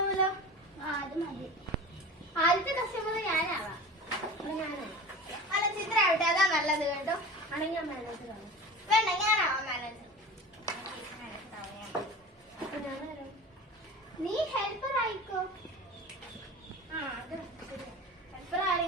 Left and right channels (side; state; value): both; normal; correlation 0.34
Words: ആ അത് മതി. ആദ്യത്തെ കസ്റ്റമർ ഞാനാവാം. അല്ല ചിത്ര ആവട്ടെ, അതാ നല്ലത് കേട്ടോ. ആണെങ്കിൽ ഞാൻ മാനേജർ ആവും. വേണ്ട, ഞാനാവാം മാനേജർ. നീ ഹെൽപ്പർ ആയിക്കോ. ആ അത് ഹെൽപ്പർ